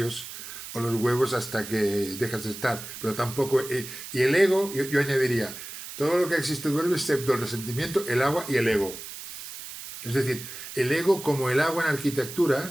o los huevos hasta que dejas de estar, pero tampoco... y el ego, yo añadiría, todo lo que existe duerme excepto el resentimiento, el agua y el ego. Es decir, el ego, como el agua en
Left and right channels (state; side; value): noise; right; hiss, 11 dB below the sound